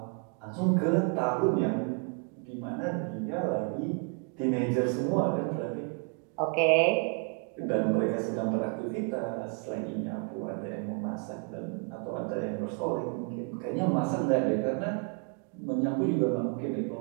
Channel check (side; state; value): left; quieter; 36.5 dB